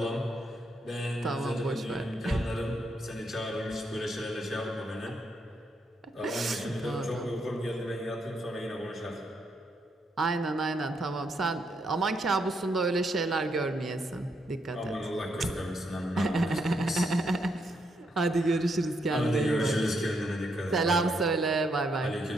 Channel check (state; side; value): normal; both; correlation 0.77